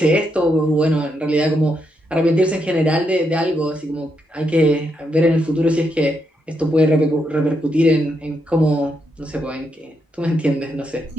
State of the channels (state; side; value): normal; both; correlation 0.80